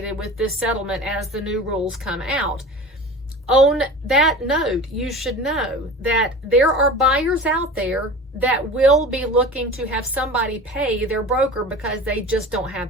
with this settlement as the new rules come out. On that note, you should know that there are buyers out there that will be looking to have somebody pay their broker because they just don't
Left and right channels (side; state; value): both; normal; correlation 0.35